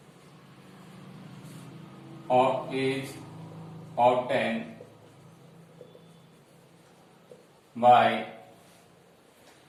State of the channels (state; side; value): identical; both; correlation 1.00